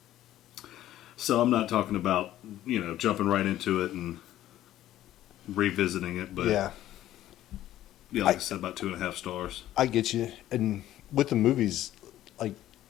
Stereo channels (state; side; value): quieter; right; 13.4 dB